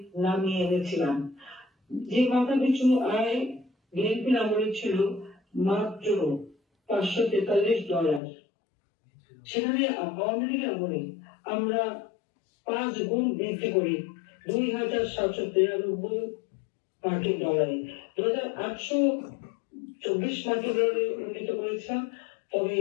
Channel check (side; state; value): right; drops out; at 8.2 s